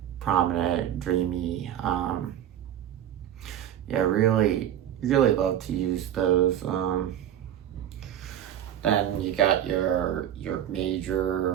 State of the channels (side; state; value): left; quieter; 10.8 dB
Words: prominent, dreamy. Yeah, really, really love to use those. Then you got your